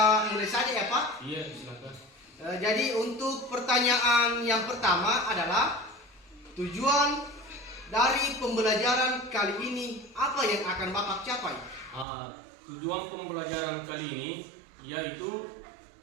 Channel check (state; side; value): drops out; left; at 12.1 s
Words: mulai saja ya Pak. Iya, silakan. Jadi untuk pertanyaan yang pertama adalah tujuan dari pembelajaran kali ini apa yang akan Bapak capai? Tujuan pembelajaran kali ini yaitu